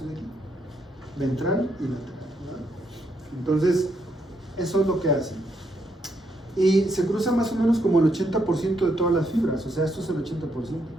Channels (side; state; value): both; normal; correlation 0.76